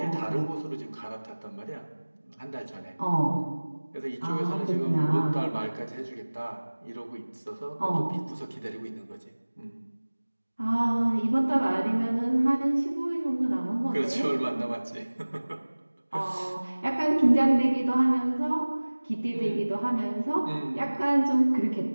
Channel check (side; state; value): both; inverted; correlation -1.00